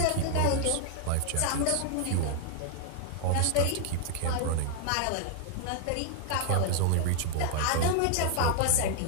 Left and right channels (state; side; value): different; both; correlation 0.00